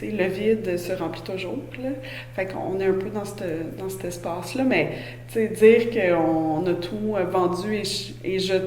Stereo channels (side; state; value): both; identical; correlation 1.00